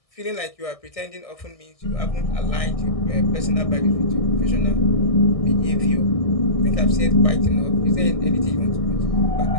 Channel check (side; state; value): right; late; 1.6 ms